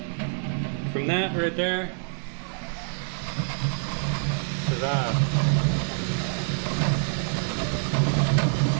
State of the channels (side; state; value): left; silent; 61 dB below the other